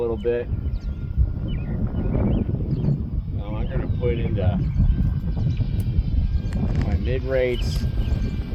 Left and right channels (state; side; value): identical; both; correlation 1.00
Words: bit. Now I'm going to put into my mid rates,